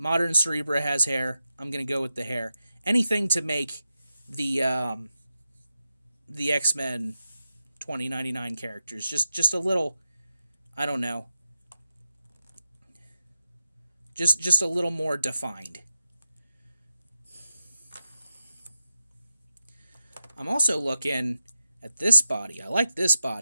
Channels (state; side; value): inverted; both; correlation -0.90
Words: Cerebra has hair. I'm gonna go with the hair. Anything to make the X-Men 2099 characters just a little, I don't know, just a little more defined. I'm also looking at this body. I like this